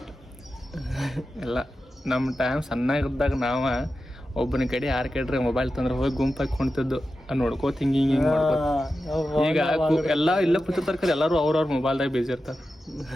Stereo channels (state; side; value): normal; both; correlation 0.92